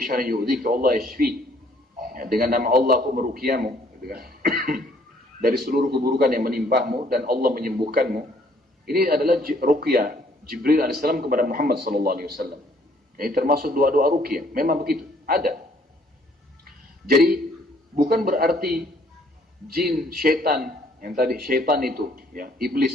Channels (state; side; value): normal; both; correlation 0.63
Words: syarrin yu'dzika Allah yashfi. Dengan nama Allah aku meruqyahmu, gitu kan? Dari seluruh keburukan yang menimpahmu dan Allah menyembuhkanmu. Ini adalah ruqyah Jibril alaihissalam kepada Muhammad sallallahu alaihi wasallam. Ini termasuk doa-doa ruqyah. Memang begitu, ada. Jadi bukan berarti jin, syaitan, yang tadi syaitan itu,